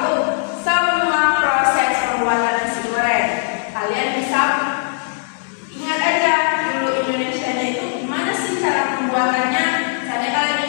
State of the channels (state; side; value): silent; right; 66 dB below the other